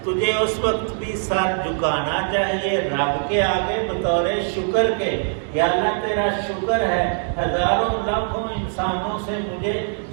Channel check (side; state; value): left; silent; 58 dB below the other